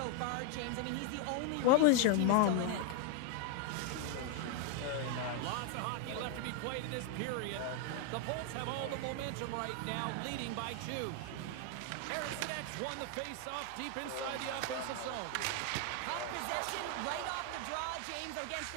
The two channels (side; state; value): both; different; correlation 0.01